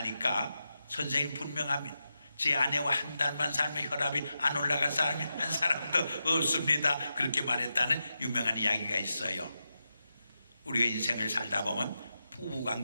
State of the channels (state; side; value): inverted; both; correlation -0.88